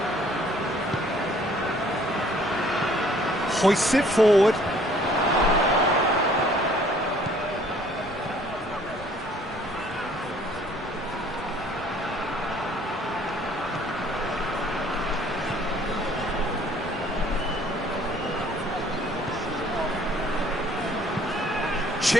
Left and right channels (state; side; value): noise; right; rumble, 19 dB below the sound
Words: Hoists it forward.